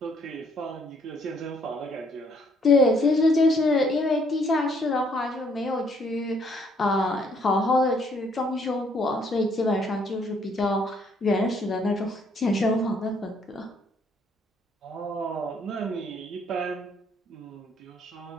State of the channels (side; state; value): both; normal; correlation 0.67